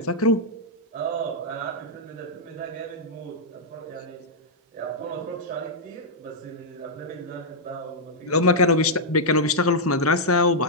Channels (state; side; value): normal; both; correlation -0.06